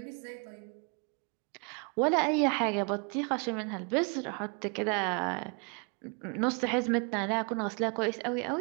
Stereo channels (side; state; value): left; quieter; 35.7 dB